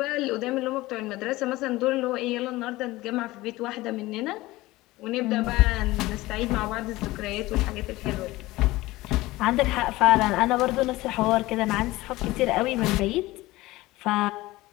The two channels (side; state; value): right; quieter; 18.9 dB